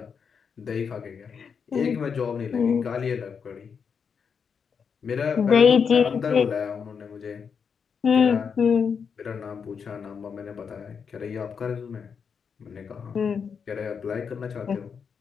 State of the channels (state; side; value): quieter; right; 6.4 dB